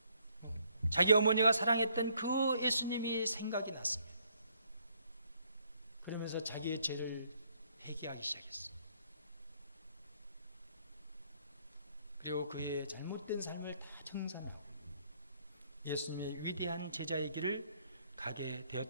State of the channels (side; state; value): both; inverted; correlation -0.68